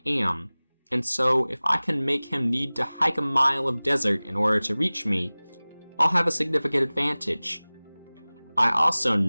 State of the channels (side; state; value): both; inverted; correlation -1.00